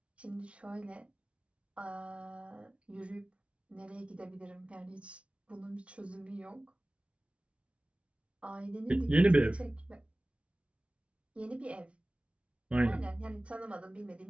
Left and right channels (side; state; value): left; late; 0.061 ms